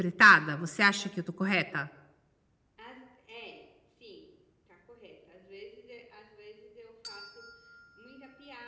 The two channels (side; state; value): both; identical; correlation 1.00